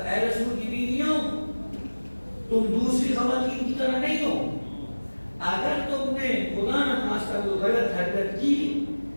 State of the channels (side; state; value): both; inverted; correlation -1.00